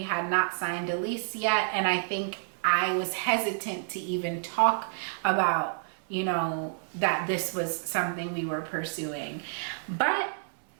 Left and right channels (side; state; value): left; silent; 58 dB below the other